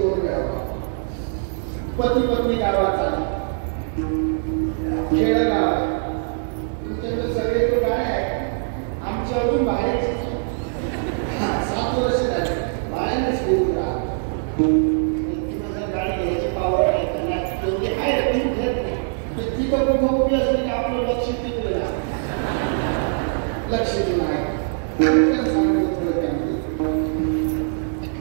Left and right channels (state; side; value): silent; left; digital silence